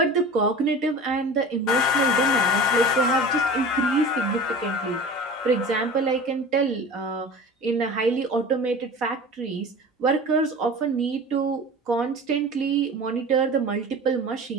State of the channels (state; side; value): normal; both; correlation 0.36